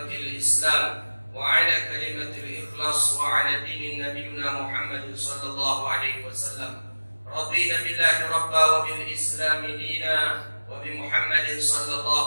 Islam وعلى كلمة الإخلاص وعلى دين نبينا محمد صلى الله عليه وسلم. رضينا بالله ربا وبالإسلام دينا وبمحمد صلى الله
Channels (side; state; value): both; inverted; correlation -1.00